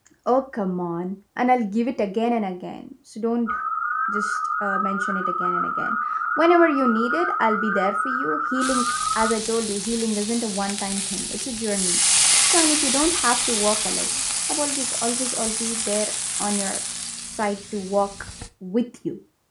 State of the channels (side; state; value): both; identical; correlation 1.00